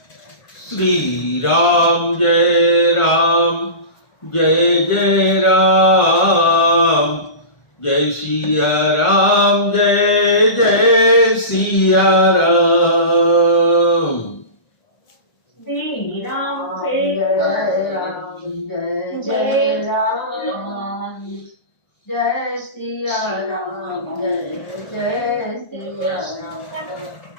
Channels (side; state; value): right; late; 1.5 ms